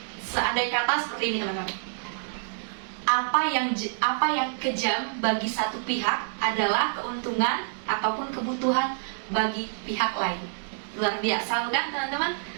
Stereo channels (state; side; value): silent; left; digital silence